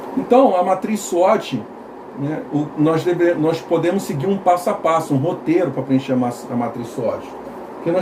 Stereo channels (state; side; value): identical; both; correlation 1.00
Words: Então, a matriz SWOT, né, nós podemos seguir um passo a passo, um roteiro para preencher a matriz SWOT. O que